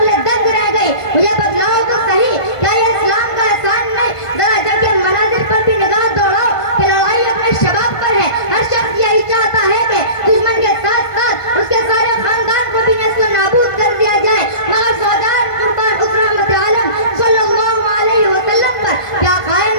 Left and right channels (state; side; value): late; right; 1.5 ms